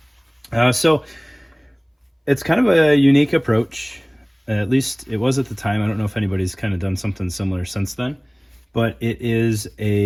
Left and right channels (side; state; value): both; identical; correlation 1.00